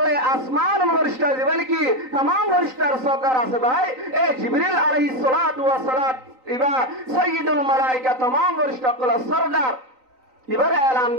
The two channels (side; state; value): left; late; 3.9 ms